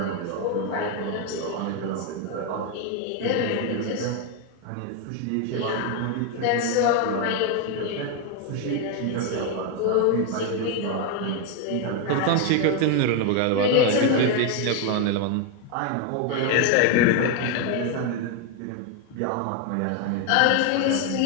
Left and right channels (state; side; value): different; both; correlation 0.01